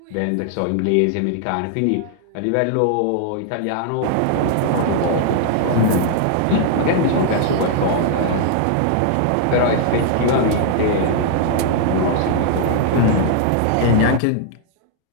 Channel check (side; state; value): both; different; correlation -0.01